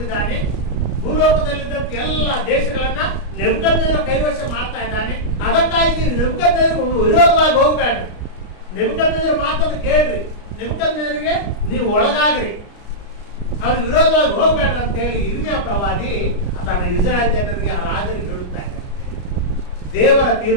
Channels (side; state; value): right; late; 33 ms